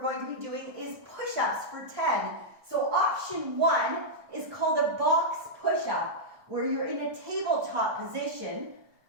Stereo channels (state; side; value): late; left; 1.1 ms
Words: going to be doing is push-ups for 10. So option 1 is called a box push-up, where you're in a tabletop position.